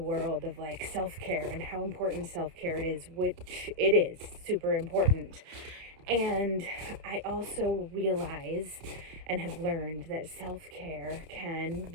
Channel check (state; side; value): late; left; 30 ms